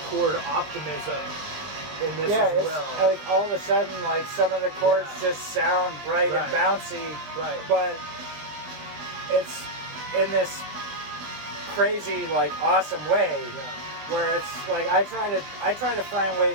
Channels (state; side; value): late; left; 20 ms